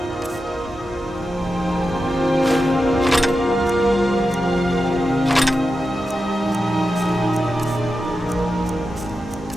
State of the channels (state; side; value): normal; both; correlation 0.90